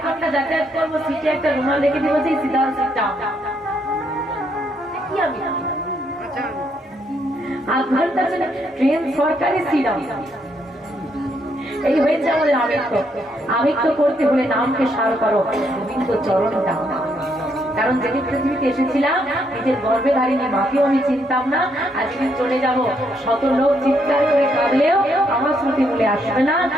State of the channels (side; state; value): both; normal; correlation 0.74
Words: ঘন্টা যাতায়াত করবো, সিটে একটা রুমাল রেখে দিব যে সিধা সিটটা কি আমি 8 ঘন্টা চলে ট্রেন সরকারি সিট এই হয়েছে আমাদের আমিত্ব। আমিত্ব করতে হলে নামকে সার করো, গোবিন্দ চরণ দাও। কারণ যেদিন পৃথিবীতে এসেছিলাম নিজের গর্ভে ধারিনি মাকেও আমি চিনতাম না, আজকে চলে যাব শত লোক চিৎকার করে কাঁদলেও আমার স্মৃতি বলে আসবে না।